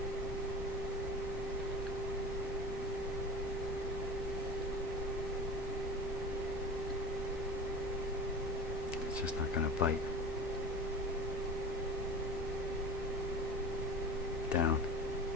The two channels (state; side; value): normal; both; correlation 0.34